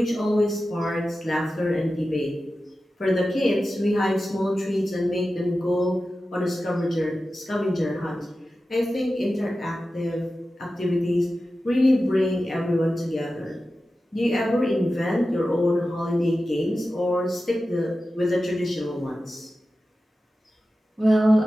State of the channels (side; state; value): both; normal; correlation 0.93